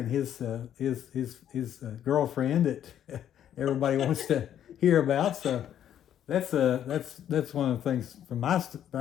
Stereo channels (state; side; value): quieter; right; 10.3 dB